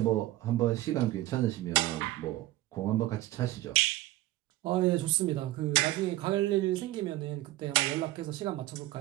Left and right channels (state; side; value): quieter; left; 16.6 dB